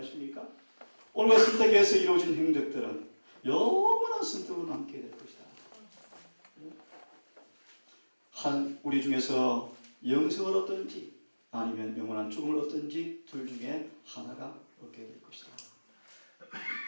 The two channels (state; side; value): inverted; both; correlation -1.00